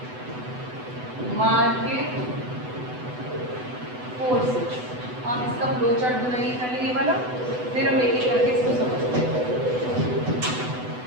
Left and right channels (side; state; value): left; late; 8.0 ms